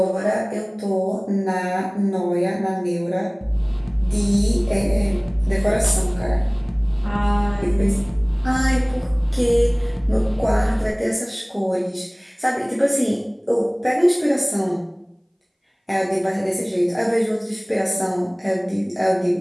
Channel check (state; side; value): identical; both; correlation 1.00